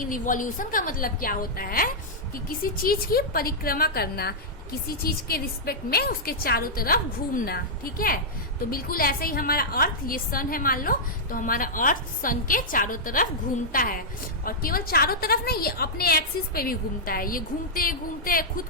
रिवॉल्यूशन का मतलब क्या होता है कि किसी चीज की परिक्रमा करना, किसी चीज के रिस्पेक्ट में उसके चारों तरफ घूमना। ठीक है। तो बिल्कुल ऐसे ही हमारा अर्थ, ये सन है मान लो, तो हमारा अर्थ सन के चारों तरफ घूमता है, और केवल चारों तरफ नहीं, ये अपने एक्सिस पे भी घूमता है। ये घूमते घूमते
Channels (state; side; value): normal; both; correlation -0.09